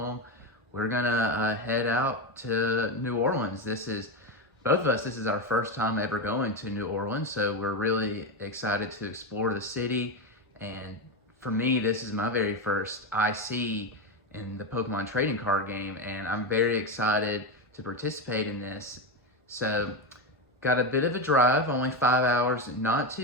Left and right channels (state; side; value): normal; both; correlation 0.13